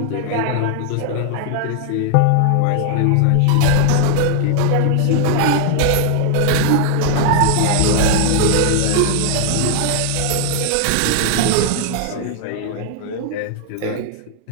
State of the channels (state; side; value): different; both; correlation 0.00